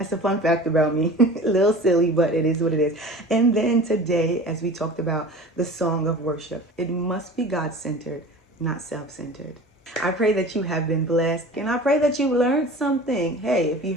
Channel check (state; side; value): normal; both; correlation 0.39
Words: a fun fact about me. A little silly, but it is what it is. And then today, as we talked about the song of worship, it must be God-centered, not self-centered. I pray that you have been blessed, and I pray that you learned something. Hey, if you